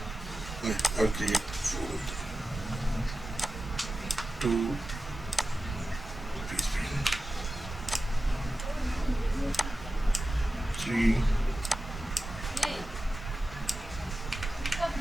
Okay, I'll create 4 of them. 2 PHP.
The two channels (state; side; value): normal; both; correlation 0.93